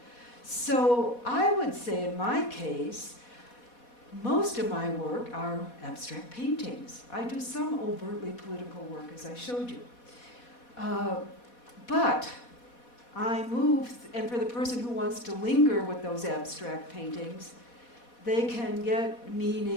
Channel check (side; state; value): right; late; 4.1 ms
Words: So I would say in my case, most of my work are abstract paintings. I do some overtly political work, as I showed you. But I move, and for the person who wants to linger with those abstract paintings, they can get